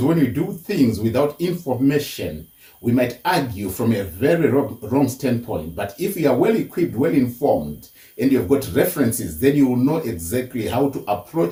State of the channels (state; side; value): identical; both; correlation 1.00